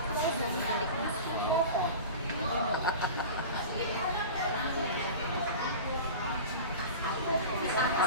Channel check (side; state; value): both; inverted; correlation -0.33